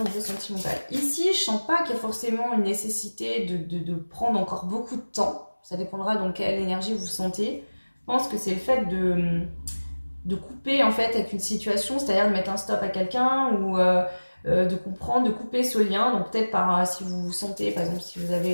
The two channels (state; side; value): inverted; both; correlation -1.00